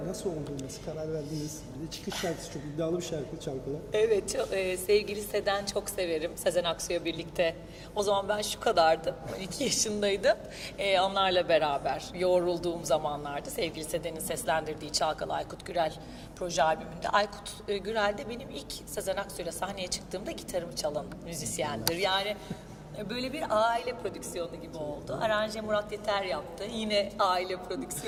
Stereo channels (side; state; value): both; identical; correlation 1.00